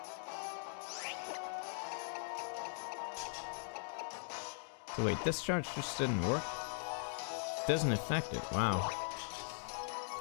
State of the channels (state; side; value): silent; right; digital silence